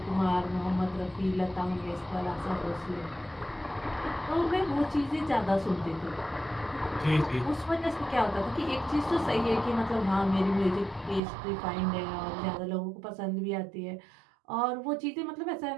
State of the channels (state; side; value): drops out; left; at 11.2 s